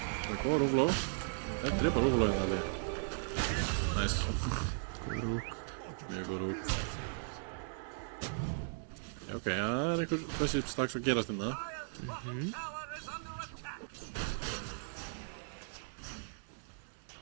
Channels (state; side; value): silent; left; 53 dB below the other